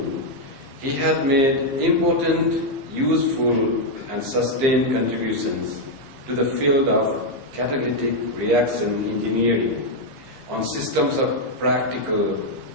he has made important, useful, and sustained contributions to the field of catalytic reaction engineering on systems of practical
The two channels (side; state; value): left; late; 15 ms